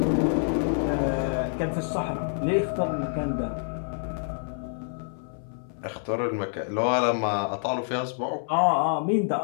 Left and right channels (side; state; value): right; silent; 60 dB below the other